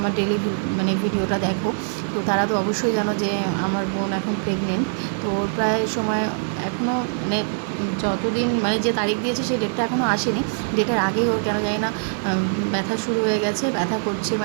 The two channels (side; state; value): left; silent; digital silence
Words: ডেলি মানে ভিডিওটা দেখো, তো তারা তো অবশ্যই জানো যে আমার বোন এখন প্রেগনেন্ট। তো ওর প্রায় সময় এখনও মানে যতদিন মানে যে তারিখ দিয়েছে সেই ডেটটা এখনও আসেনি। ডেটের আগেই ওর কেন জানি না ব্যথা শুরু হয়ে গেছে, ব্যথা করছে,